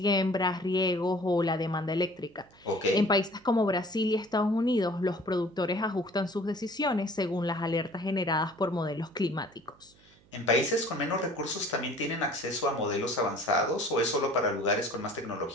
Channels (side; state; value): right; noise; hum, 29 dB below the sound